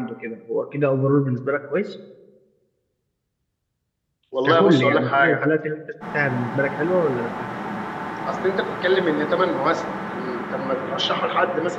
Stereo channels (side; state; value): both; identical; correlation 1.00